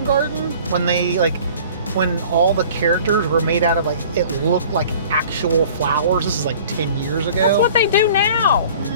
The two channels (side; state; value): both; inverted; correlation -0.47